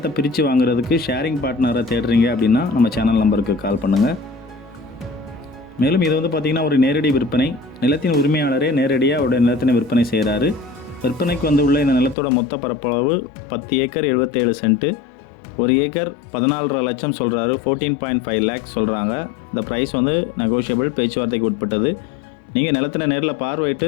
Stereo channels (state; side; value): drops out; right; at 12.2 s